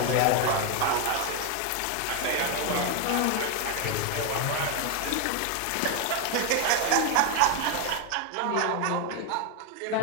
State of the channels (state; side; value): different; both; correlation 0.01